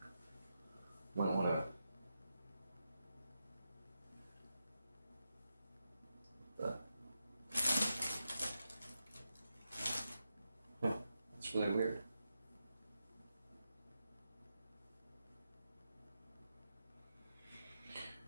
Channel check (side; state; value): both; inverted; correlation -0.87